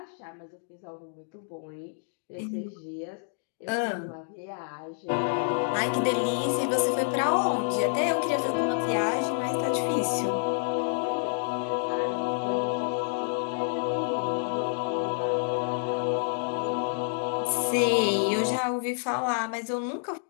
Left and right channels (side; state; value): right; silent; digital silence